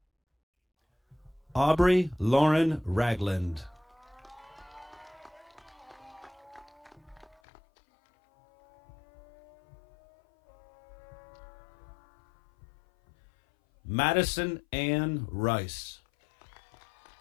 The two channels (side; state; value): right; drops out; at 7.4 s